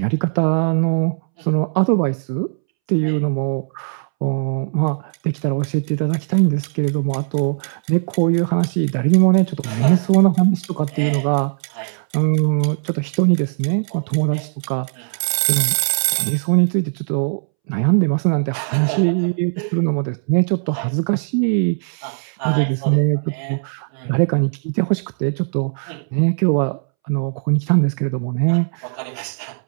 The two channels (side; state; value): left; silent; 66 dB below the other